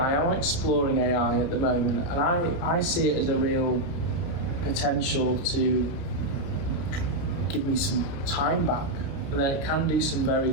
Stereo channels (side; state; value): right; late; 30 ms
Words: I'm exploring AI at the moment, and I see it as a real potential to give me some time back, and then it can do some very